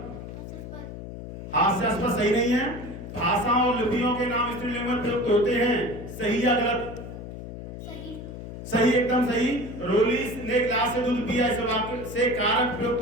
हास्यास्पद सही नहीं है। भाषा और लिपियों के नाम स्त्रीलिंग में प्रयुक्त होते हैं, सही या गलत? सही। सही, एकदम सही। रोली ने गिलास से दूध पिया, इस वाक्य से कारक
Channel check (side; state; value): left; noise; hum, 10 dB below the sound